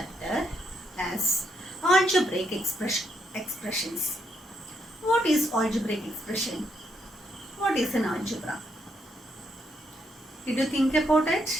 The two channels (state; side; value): normal; both; correlation 0.77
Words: as algebraic expressions. What is algebraic expression? What is an algebra? Did you think about